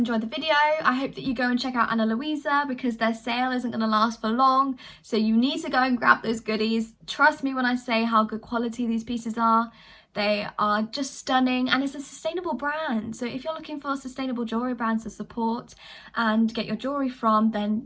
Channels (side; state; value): both; identical; correlation 1.00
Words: the video. I hope that you go and check out Ana Luisa, because their sale isn't going to last for long. So you need to go and grab those goodies. Trust me when I say how good quality these pieces are. They are just stunning, and it's a sustainable brand. So if you're looking for sustainable jewelry brands to support and get your jewelry from,